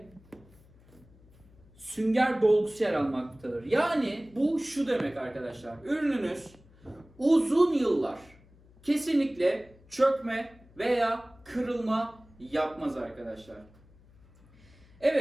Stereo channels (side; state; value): left; noise; hum, 27 dB below the sound